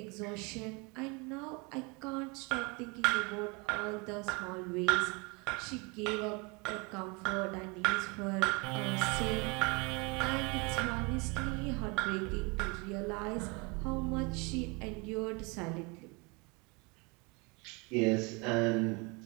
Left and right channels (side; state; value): left; quieter; 29.2 dB